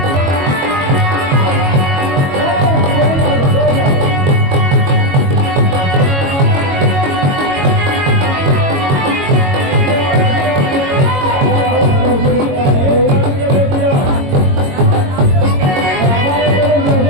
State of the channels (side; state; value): left; late; 22 ms